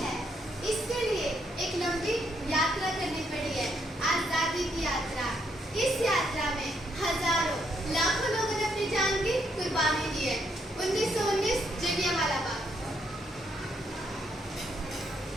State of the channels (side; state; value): both; normal; correlation 0.75